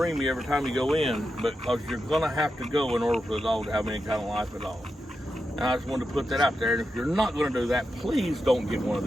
you every time you go in, because you're going to have to go in order for the dog to have any kind of life at all. And I just wanted to put that out there. And if you're not going to do that, please don't get one of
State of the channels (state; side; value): normal; both; correlation 0.88